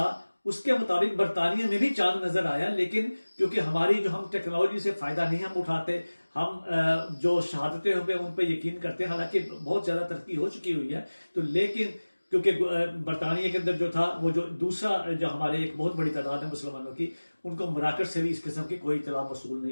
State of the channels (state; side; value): inverted; both; correlation -1.00